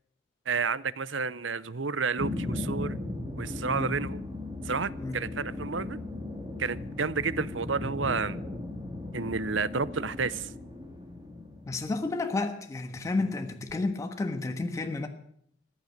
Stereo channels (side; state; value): both; normal; correlation 0.35